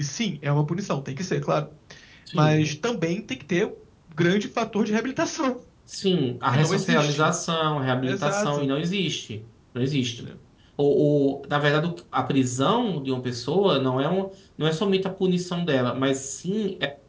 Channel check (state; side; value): identical; both; correlation 1.00